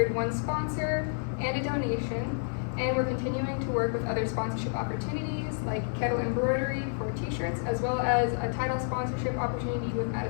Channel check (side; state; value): right; silent; 58 dB below the other